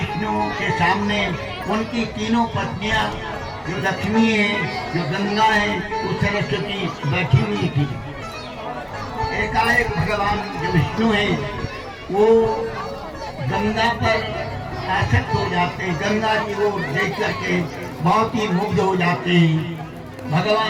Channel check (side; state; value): both; identical; correlation 1.00